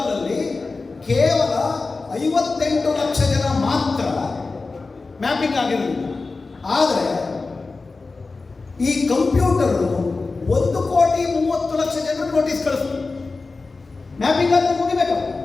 ಕೇವಲ 58 ಲಕ್ಷ ಜನ ಮಾತ್ರ ಮ್ಯಾಪಿಂಗ್ ಆಗಿರಲಿಲ್ಲ. ಆದರೆ ಈ ಕಂಪ್ಯೂಟರು 1,30,00,000 ಜನರು ನೋಟಿಸ್ ಕಳಿಸ್ತು. ಮ್ಯಾಪಿಂಗ್ ಆದರೆ ಮುಗಿಬೇಕು.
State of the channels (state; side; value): quieter; right; 3.9 dB